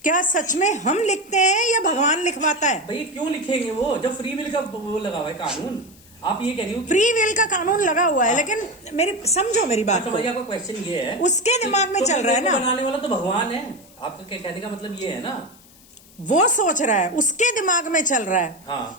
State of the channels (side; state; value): left; noise; hiss, 25 dB below the sound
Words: क्या सच में हम लिखते हैं या भगवान लिखवाता है? भाई क्यों लिखेंगे वो, जब फ्री विल का वो लगा हुआ है कानून। आप ये कह रही हो फ्री विल का कानून लगा हुआ है, लेकिन समझो मेरी बात को, आपका क्वेश्चन ये है उसके दिमाग में चल रहा है ना, बनाने वाला तो भगवान है। आपका कहने का मतलब ये है ना, वो सोच रहा है, उसके दिमाग में चल रहा है,